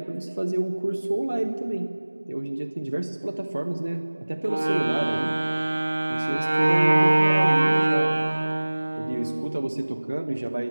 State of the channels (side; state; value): both; inverted; correlation -1.00